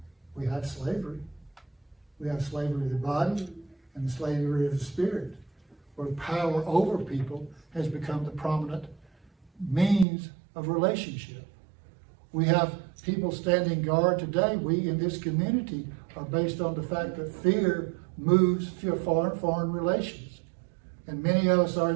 slavery. We have slavery of the body and the slavery of the spirit, where power over people has become the prominent means of relationship. We have people standing guard today. We in this community are based on the fact that fear moves foreign relations. And many of us are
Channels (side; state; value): left; drops out; at 10.1 s